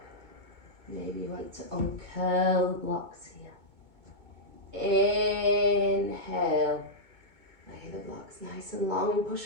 Maybe you want to uncurl the blocks here. Inhale. Lay the blocks nice and long and push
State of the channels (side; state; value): left; late; 2.2 ms